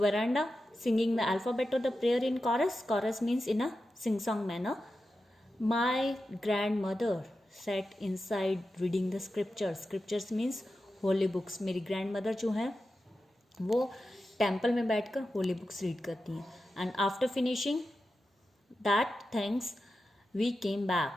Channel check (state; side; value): normal; both; correlation 0.91